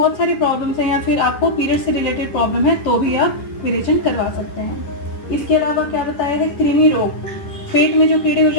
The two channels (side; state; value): right; late; 10 ms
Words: सारी प्रॉब्लम्स हैं, या फिर आपको पीरियड से रिलेटेड प्रॉब्लम है तो भी आप विरेचन करवा सकते हैं। इसके अलावा क्या बताया है, कृमि रोग, पेट में जो कीड़े हो